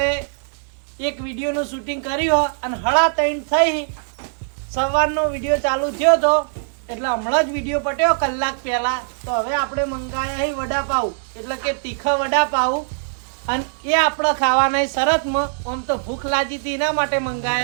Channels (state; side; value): silent; left; digital silence